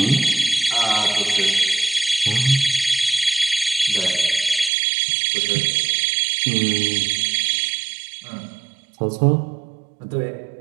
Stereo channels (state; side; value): drops out; left; at 4.7 s